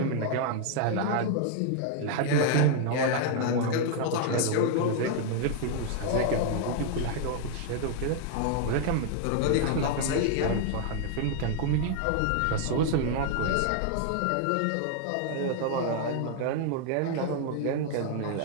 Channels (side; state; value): both; different; correlation 0.00